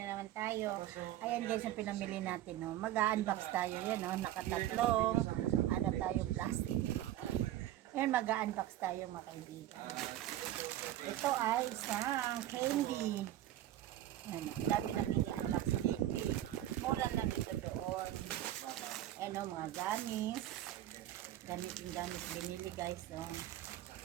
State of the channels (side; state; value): left; quieter; 13.1 dB